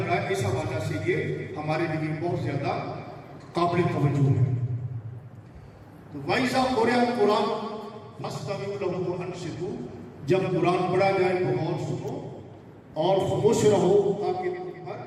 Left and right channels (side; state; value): both; identical; correlation 1.00